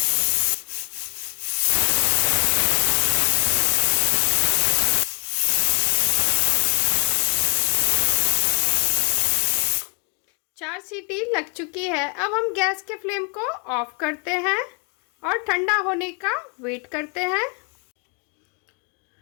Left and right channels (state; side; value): quieter; right; 35.8 dB